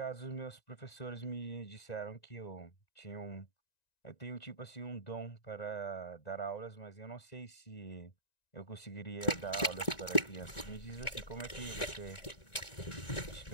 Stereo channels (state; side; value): late; right; 1.9 ms